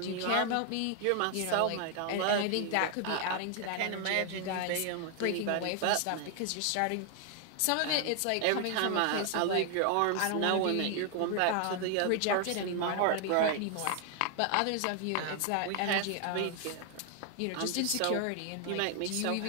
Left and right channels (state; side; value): different; both; correlation 0.00